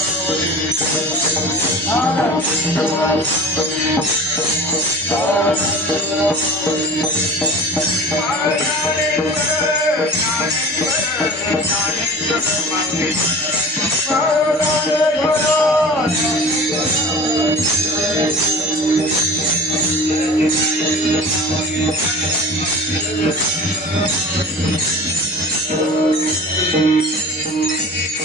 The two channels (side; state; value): both; normal; correlation 0.38